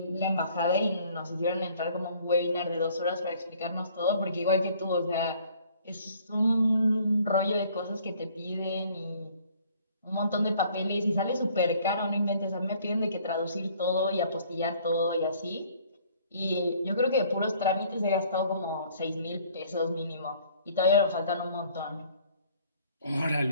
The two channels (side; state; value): both; inverted; correlation -0.58